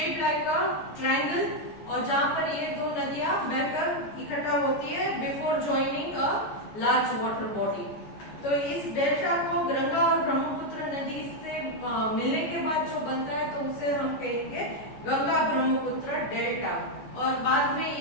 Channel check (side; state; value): right; late; 14 ms